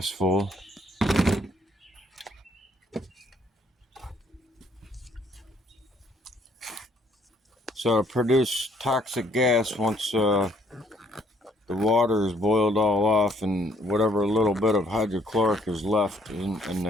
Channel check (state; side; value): normal; both; correlation 0.65